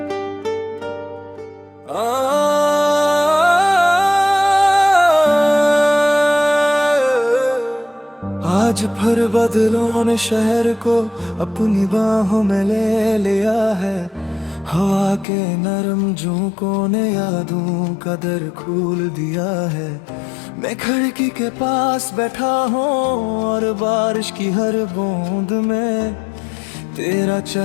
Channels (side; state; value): right; drops out; at 15.2 s